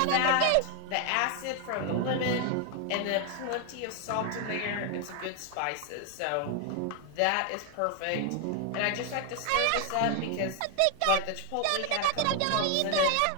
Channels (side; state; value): both; different; correlation 0.00